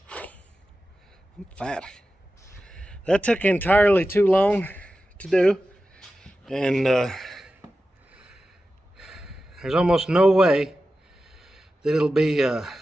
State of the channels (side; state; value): both; normal; correlation 0.93